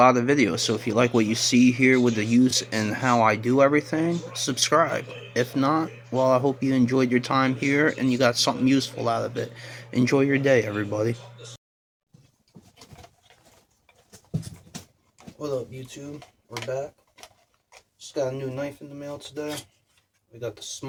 of videos, so if you like what you see here with the use and how I do everything, subscribe. If not, well, I hope you enjoyed your time here and you got something useful out of it. Enjoy your day, everybody. What up, YouTube? We're back. Just got a new knife in the mail today. We got the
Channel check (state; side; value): identical; both; correlation 1.00